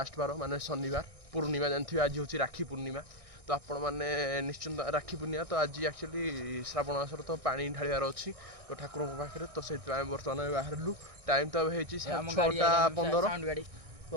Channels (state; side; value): late; left; 1.6 ms